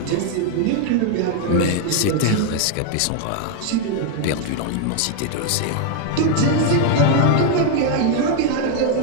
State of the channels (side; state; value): both; different; correlation 0.00